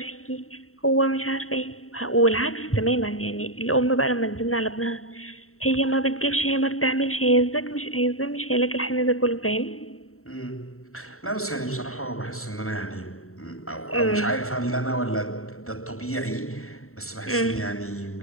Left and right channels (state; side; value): late; right; 0.63 ms